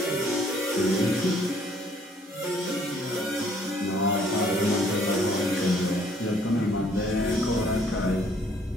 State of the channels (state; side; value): normal; both; correlation 0.62